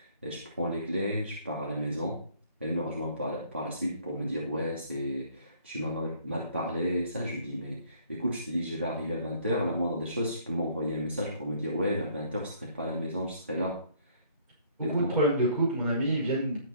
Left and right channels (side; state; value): both; inverted; correlation -0.60